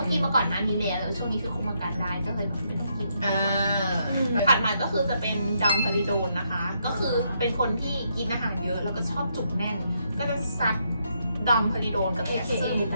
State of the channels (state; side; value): inverted; both; correlation -0.77